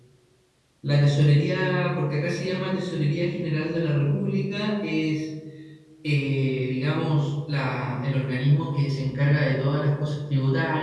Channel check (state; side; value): identical; both; correlation 1.00